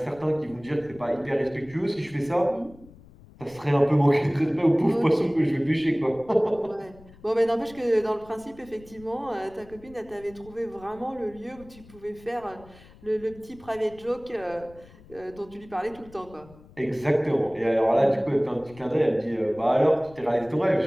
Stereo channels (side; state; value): left; noise; rumble, 23 dB below the sound